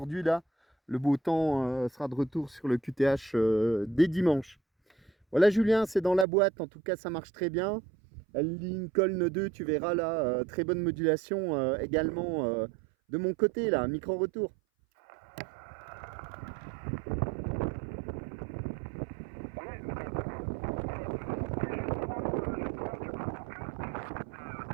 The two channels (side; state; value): left; drops out; at 6.2 s